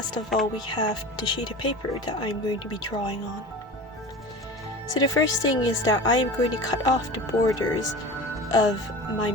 of all, we have the sheet of paper that I'm going to be drawing on. So the first thing is that I am going to cut off the borders of my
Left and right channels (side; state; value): both; normal; correlation 0.34